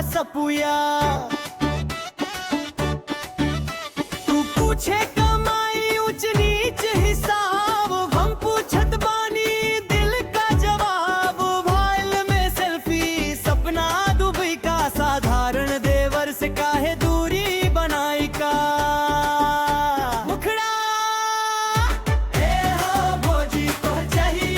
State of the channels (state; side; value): identical; both; correlation 1.00